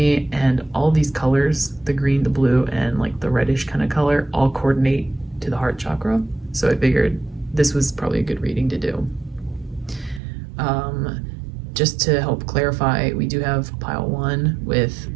and all these colors, the green, the blue, and like the reddish kind of color, all coordinate to the heart chakra. So I figured this was probably a good reading to do. Just to help clarify, we do have pile 1 with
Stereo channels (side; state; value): left; drops out; at 10.2 s